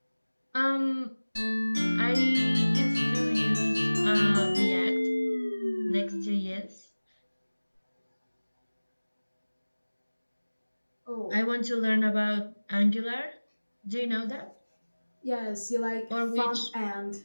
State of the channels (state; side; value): inverted; both; correlation -1.00